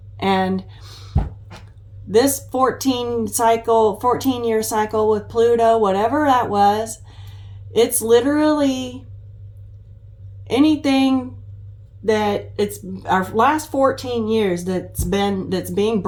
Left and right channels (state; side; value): identical; both; correlation 1.00